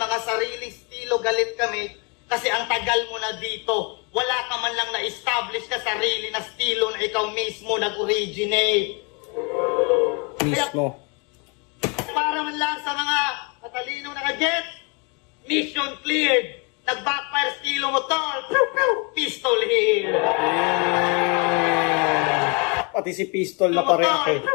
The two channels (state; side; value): quieter; right; 33.0 dB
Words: sariling estilo galit kami. Kasi ang tagal mo na dito, wala ka man lang na-establish na sarili na estilo na ikaw mismo nag-originate. Mismo. Para man lang sa mga matalinong nakaget, mission cleared. Nag-backfire estilo mo tol. Pistol here. Pati si Pistol na pareho eh.